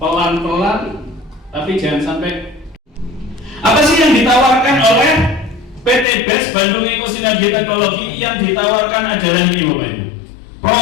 tapi jangan sampai. Apa sih yang ditawarkan oleh PT BES Bandung Eko Sinergi Teknologi? Yang ditawarkan adalah ini Bapak Ibu,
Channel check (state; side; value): drops out; right; at 6.1 s